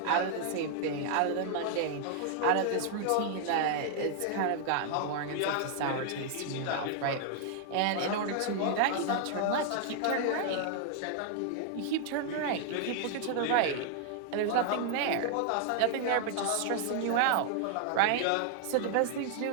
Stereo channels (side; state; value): both; different; correlation 0.00